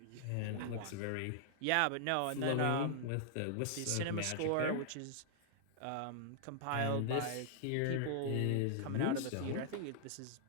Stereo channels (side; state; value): both; different; correlation -0.01